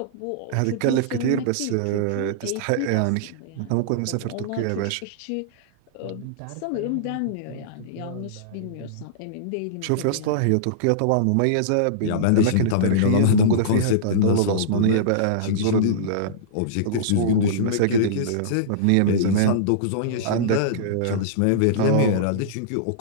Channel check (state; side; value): different; both; correlation -0.03